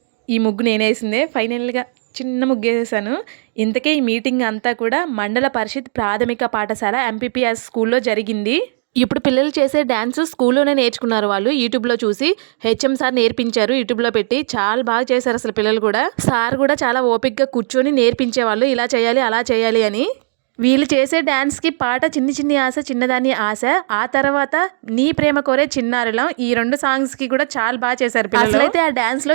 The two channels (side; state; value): left; silent; digital silence